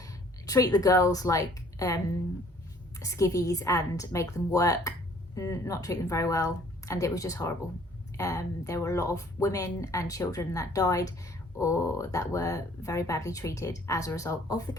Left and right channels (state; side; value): normal; both; correlation 0.57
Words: treat the girls like skivvies and make them work, not treat them very well, and it was just horrible. There were a lot of women and children that died or that were very badly treated as a result of the